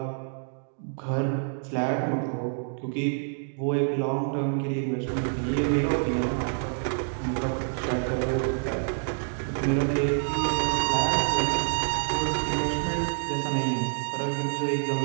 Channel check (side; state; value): left; silent; digital silence